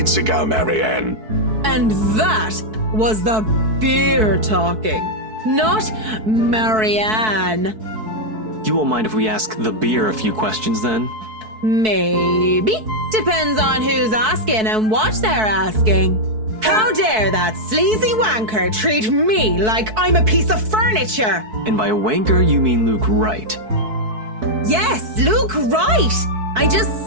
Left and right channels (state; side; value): late; left; 4.6 ms